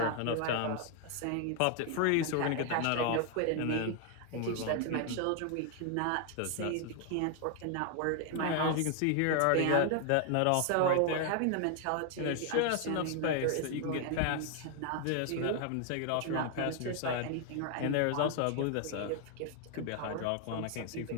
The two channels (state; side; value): different; both; correlation 0.00